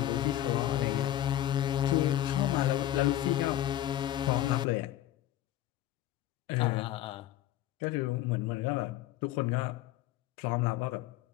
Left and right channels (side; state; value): right; quieter; 13.2 dB